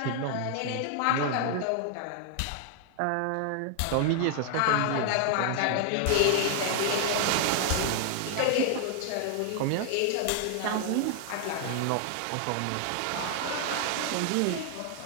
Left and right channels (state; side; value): different; both; correlation 0.00